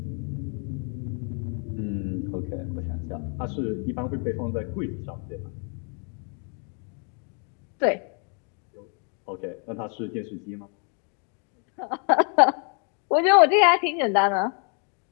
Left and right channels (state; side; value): quieter; right; 39.9 dB